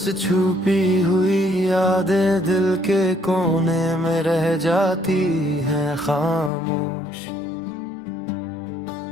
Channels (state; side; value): drops out; right; at 6.5 s